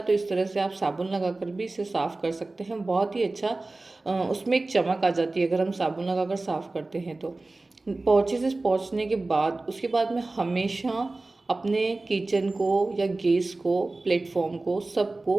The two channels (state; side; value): quieter; left; 3.2 dB